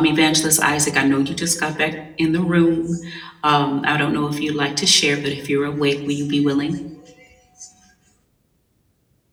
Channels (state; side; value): identical; both; correlation 1.00